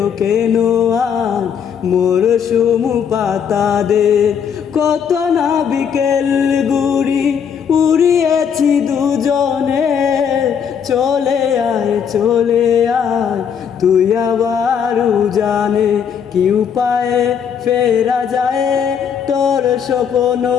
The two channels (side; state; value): right; quieter; 7.5 dB